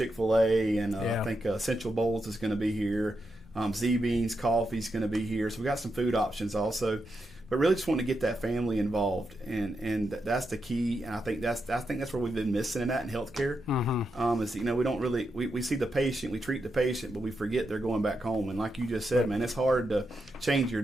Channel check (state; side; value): normal; both; correlation 0.85